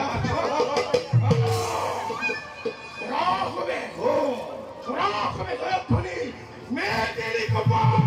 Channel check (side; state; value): both; identical; correlation 1.00